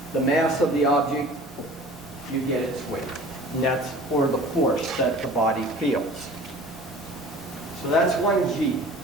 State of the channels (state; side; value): normal; both; correlation 0.44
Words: the mass of the object, you get its weight. And that's for the force that the body feels. So that's 1g.